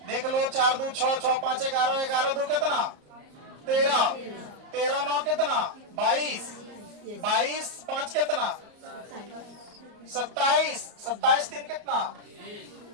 देख लो, 4 2 6, 6 5 11, 11 2 कितना? 13, 13 9 कितना? 22, 22 5 कितना? 27, 27 3 कितना?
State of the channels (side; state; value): left; late; 34 ms